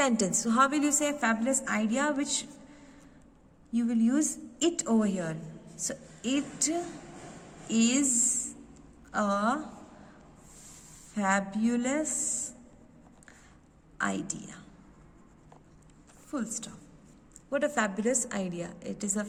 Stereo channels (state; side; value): identical; both; correlation 1.00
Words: So how will you say fabulous idea, which you will use it over here. So it is a fabulous idea. Full stop. What a fabulous idea. It is a